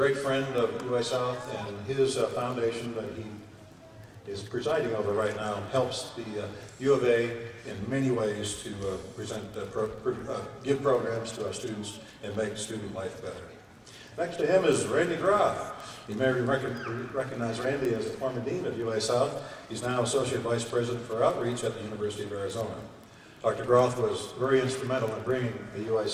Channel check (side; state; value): both; identical; correlation 1.00